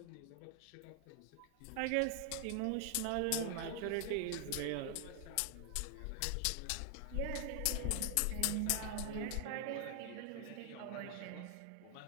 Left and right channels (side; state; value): both; different; correlation 0.00